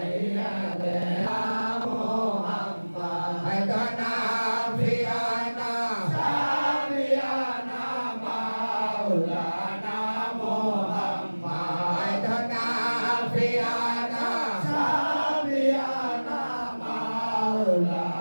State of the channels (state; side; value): inverted; both; correlation -1.00